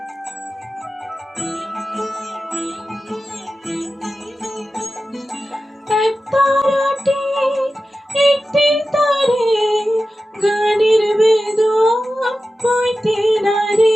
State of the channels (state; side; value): normal; both; correlation 0.94